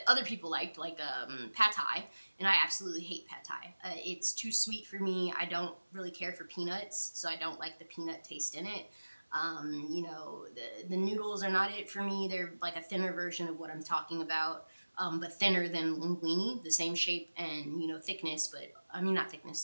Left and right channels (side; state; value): both; inverted; correlation -1.00